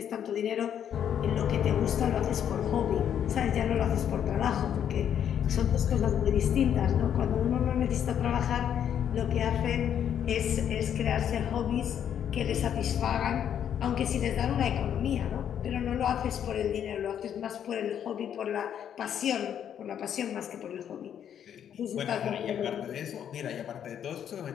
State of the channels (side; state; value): right; quieter; 9.3 dB